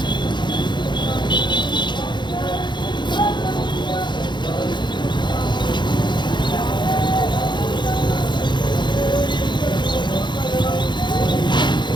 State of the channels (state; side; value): late; right; 0.22 ms